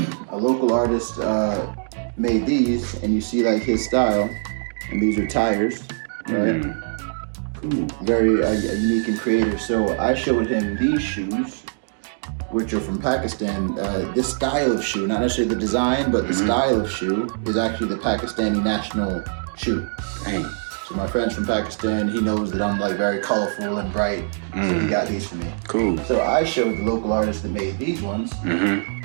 a local artist made these, and you see like his style, and these are tires, right? Cool. Very unique and creative. So I showed him these shoes, which are from Pakistan. This style of shoe, not necessarily the design, but the style of shoe is actually the Pakistani national shoe. Dang. So my friend's from Pakistan, he knows that I'm like very colorful and bright, so he got these for me. Cool. So I showed the local artist that made these ones,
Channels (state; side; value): silent; left; digital silence